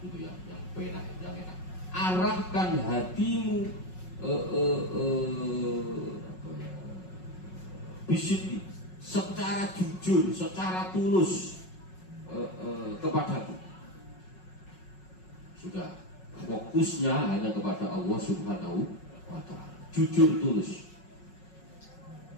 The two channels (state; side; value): late; right; 5.4 ms